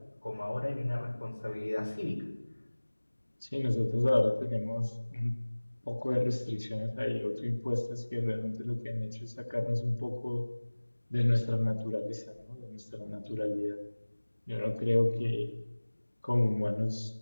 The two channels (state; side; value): inverted; both; correlation -1.00